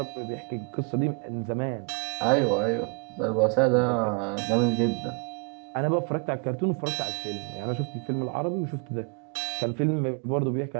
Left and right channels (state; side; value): quieter; left; 36.4 dB